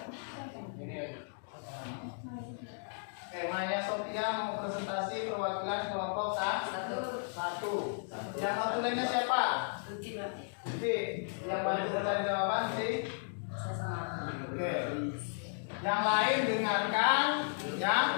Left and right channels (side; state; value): right; silent; digital silence